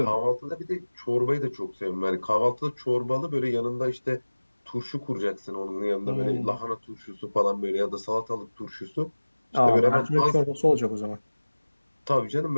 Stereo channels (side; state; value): both; inverted; correlation -1.00